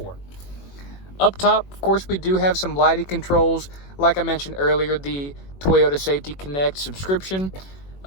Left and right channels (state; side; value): late; right; 21 ms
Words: Up top, of course, we do have some lighting controls. Like I mentioned earlier, the Toyota Safety Connect subscription.